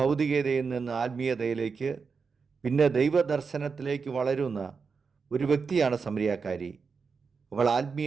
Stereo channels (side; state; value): left; quieter; 5.2 dB